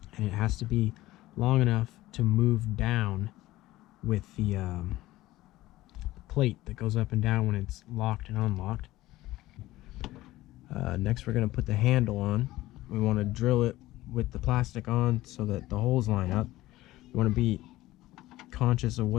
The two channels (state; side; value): quieter; right; 16.9 dB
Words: and it has to be long enough to move down with the plate that goes up and down when it's locked and unlocked. Next, we're going to put the handle on. We want to drill it with the plastic on so that the holes line up. You want to be conscious of